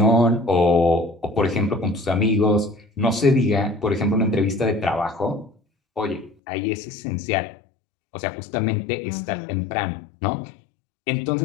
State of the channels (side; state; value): right; drops out; at 6.4 s